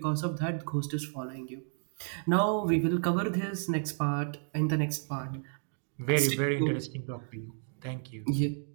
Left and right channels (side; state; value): left; silent; digital silence